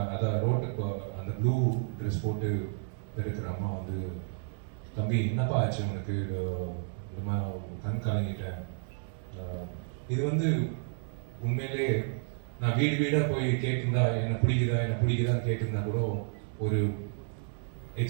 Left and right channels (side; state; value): left; silent; 57 dB below the other